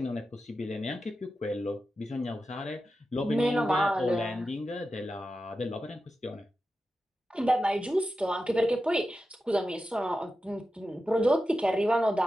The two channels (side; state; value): both; normal; correlation 0.91